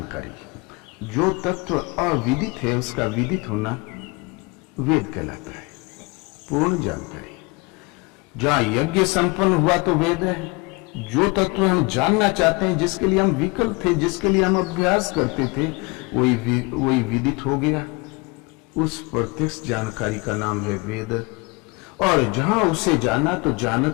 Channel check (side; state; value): right; quieter; 26.8 dB